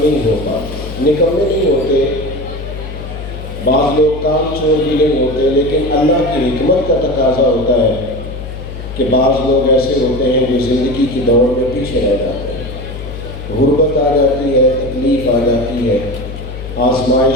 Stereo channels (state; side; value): noise; left; hum, 10 dB below the sound